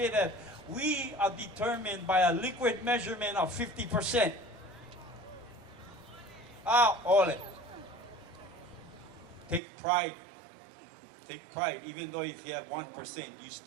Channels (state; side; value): drops out; left; at 9.6 s